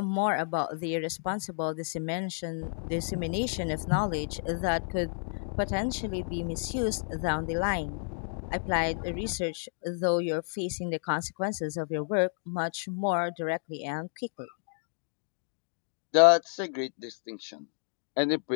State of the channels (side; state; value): right; silent; digital silence